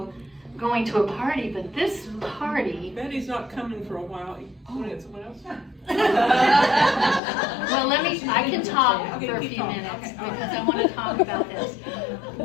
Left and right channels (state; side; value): drops out; right; at 7.2 s